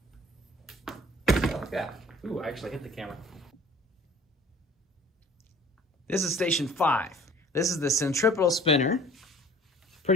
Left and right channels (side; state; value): both; normal; correlation 0.50